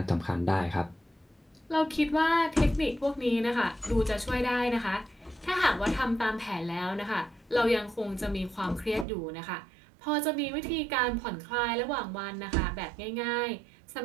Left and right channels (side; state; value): left; drops out; at 9.1 s